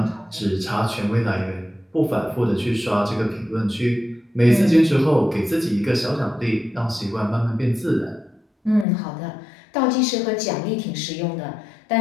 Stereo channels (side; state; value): right; drops out; at 8.8 s